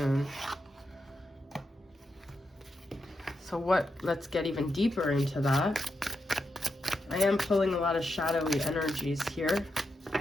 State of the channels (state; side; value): normal; both; correlation 0.86